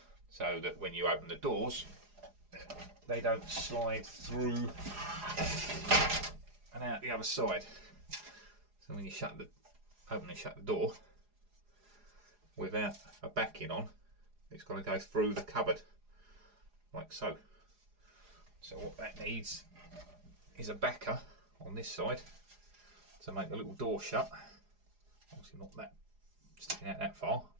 so that when you open the doors they don't slide through and out the other side. So when you open and shut the door without a backing on, it's got to go through the cupboard like so. So what that needs is a backer on this side to make the little door shut. Obviously not that sticking out that far,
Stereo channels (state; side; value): late; left; 4.8 ms